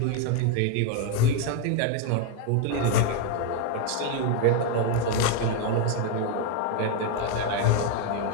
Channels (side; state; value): both; different; correlation 0.01